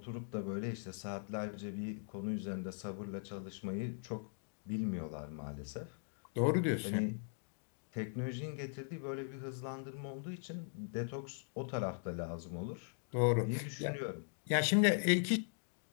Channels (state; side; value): silent; right; digital silence